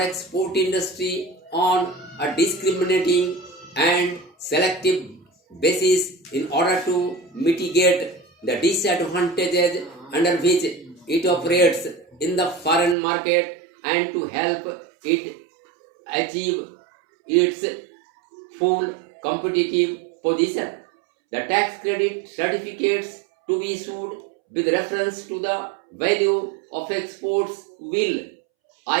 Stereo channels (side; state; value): left; drops out; at 13.0 s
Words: export industry on a discriminating and selective basis in order to mitigate the disadvantages under which it operates in the foreign market and to help it achieve its full competitive position. The tax credit certificates to be issued with reference to the value of exports will,